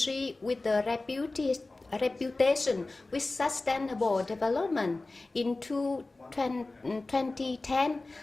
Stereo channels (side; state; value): right; quieter; 3.2 dB